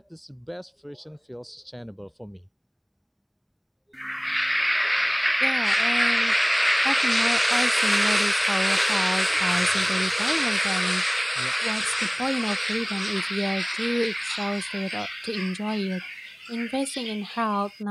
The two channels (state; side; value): identical; both; correlation 1.00